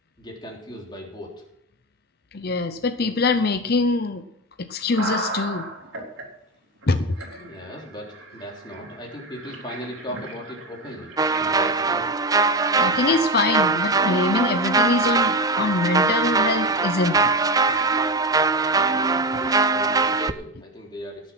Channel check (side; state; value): both; normal; correlation 0.17